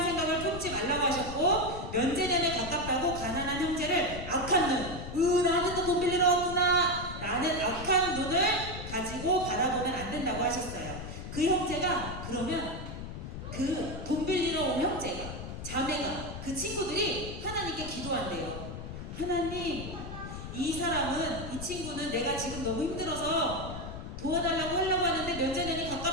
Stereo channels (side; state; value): left; noise; rumble, 8 dB below the sound